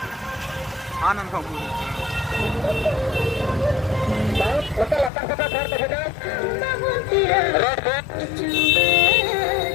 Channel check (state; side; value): drops out; right; at 5.1 s